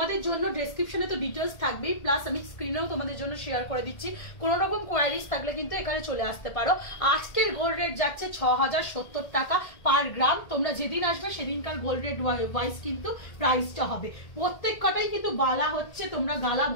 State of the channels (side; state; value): right; late; 1.7 ms